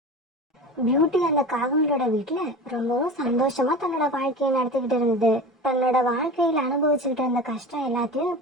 பியூட்டி அந்த காகங்களோட வீட்டுல ரொம்பவும் சந்தோஷமா தன்னோட வாழ்க்கையை நடத்திக்கிட்டு இருந்தது. தன்னோட வாழ்க்கையில அனுபவிச்சுக்கிட்டு இருந்த கஷ்டம் எல்லாத்தையும்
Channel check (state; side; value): normal; both; correlation 0.32